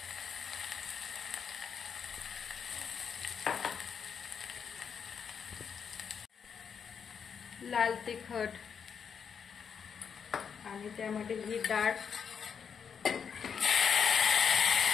लाल तिखट आणि त्यामध्ये ही डाळ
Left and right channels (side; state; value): right; quieter; 6.9 dB